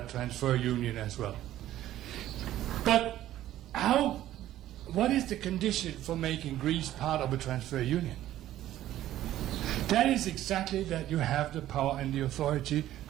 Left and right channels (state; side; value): quieter; left; 13.4 dB